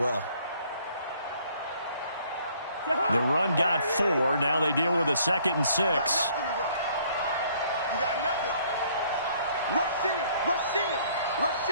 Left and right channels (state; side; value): inverted; both; correlation -0.61